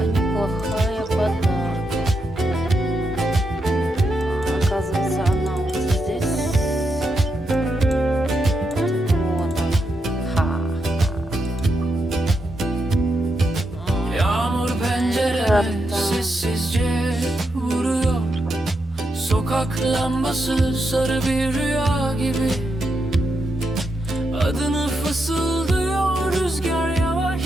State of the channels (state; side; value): normal; both; correlation 0.83